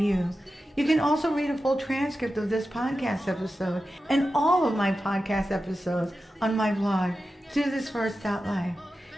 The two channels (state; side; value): normal; both; correlation 0.92